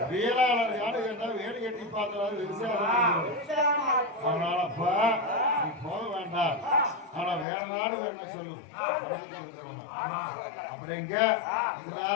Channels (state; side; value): drops out; right; at 7.5 s